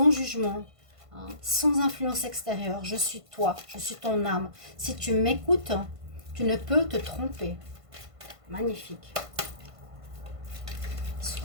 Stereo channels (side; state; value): left; late; 1.5 ms